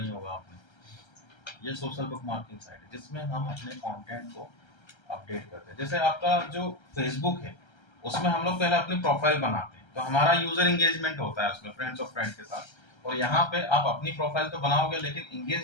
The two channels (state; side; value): late; right; 1.3 ms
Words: ही होगा आपने, ये सोशल बुक मार्किंग साइट है जिसमें हम अपने कंटेंट को अपडेट करते हैं। जैसे आपका जो फेसबुक है उसमें हम लोग पहले अपनी प्रोफाइल बनाते हैं, तो हमारा यूजर एंगेजमेंट होता है उसमें फ्रेंड्स ऑफ फ्रेंड के साथ, और यहाँ पे आप अपनी प्रोफाइल तो बनाओगे लेकिन